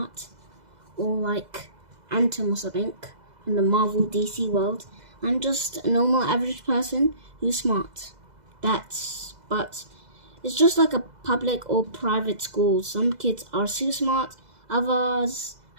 or like Atom or something in the Marvel DC world. I'm just a normal average person who's smart. but it's just like a public or private school. Some kids are super smart, others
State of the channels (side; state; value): left; late; 2.0 ms